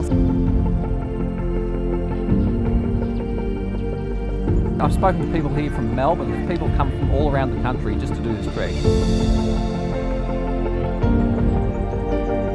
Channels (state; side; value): identical; both; correlation 1.00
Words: I've spoken to people here from Melbourne. There's people come from all around the country just to do this trek.